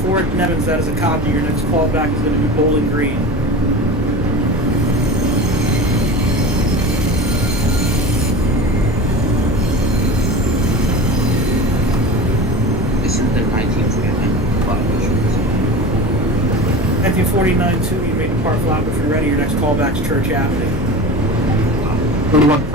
Nevins. That is a copy. Your next callback is going to be Bowling Green. This is the 1949 Flatbush. 1949 2. You may depart Flatbush when ready. Your next callback is Church Avenue.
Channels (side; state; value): both; normal; correlation 0.32